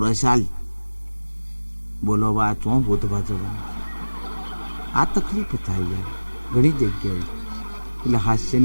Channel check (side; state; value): both; inverted; correlation -1.00